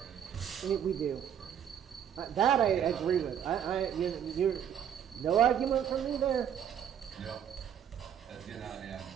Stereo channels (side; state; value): left; quieter; 9.0 dB